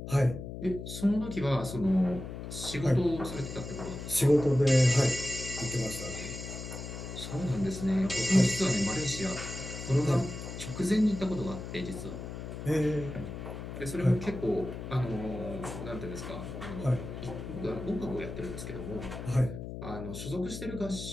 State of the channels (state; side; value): noise; left; hum, 8 dB below the sound